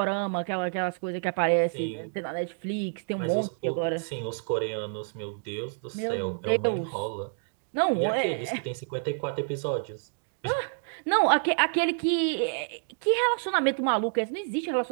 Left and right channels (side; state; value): left; silent; digital silence